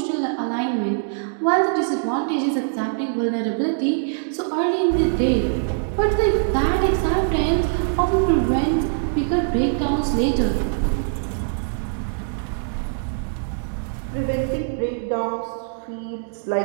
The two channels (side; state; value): left; silent; digital silence